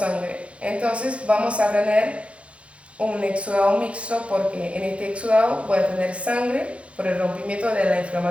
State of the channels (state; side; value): late; left; 0.061 ms